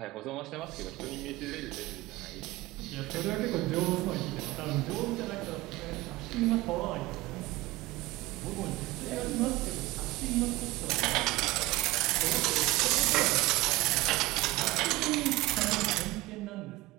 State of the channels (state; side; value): quieter; left; 19.7 dB